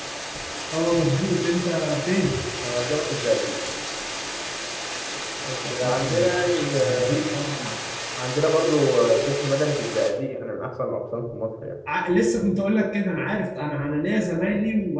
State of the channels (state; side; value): identical; both; correlation 1.00